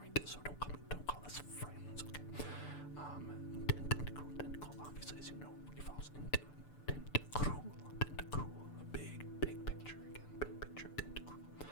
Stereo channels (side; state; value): right; late; 6.8 ms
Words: right? So don't call us friends, okay? Tentacool, obviously, as you know, evolves into Tentacruel, a big picture again, big picture of Tentacruel.